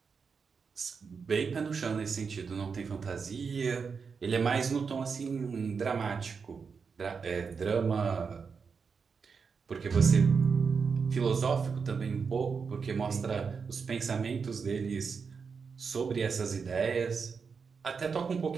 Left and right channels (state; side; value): quieter; left; 5.6 dB